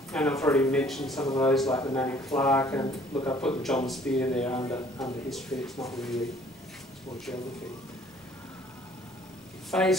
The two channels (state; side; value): normal; both; correlation 0.56